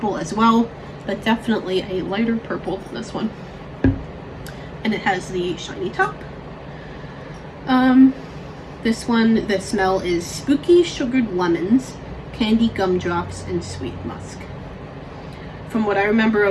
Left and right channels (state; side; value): identical; both; correlation 1.00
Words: as well, but definitely a lighter purple than this one. And it has the shiny top. This one, the smell is spooky sugared lemons, candy gumdrops, and sweet musk. From what I remember